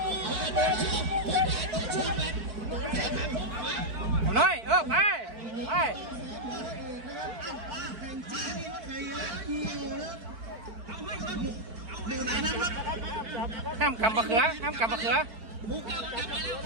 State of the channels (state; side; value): late; left; 4.5 ms